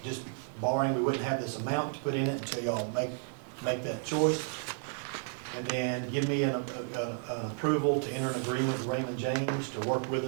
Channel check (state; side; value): silent; left; 56 dB below the other